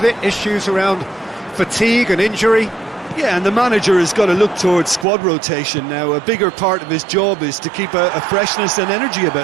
it issues around fatigue and injury. Yeah, and the manager has got to look towards squad rotation now. A bigger part of his job is to keep a freshness and energy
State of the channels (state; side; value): drops out; left; at 5.1 s